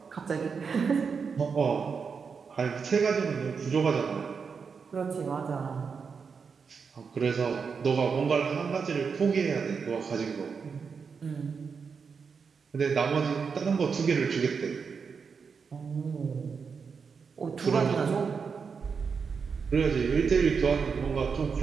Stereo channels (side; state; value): left; quieter; 5.7 dB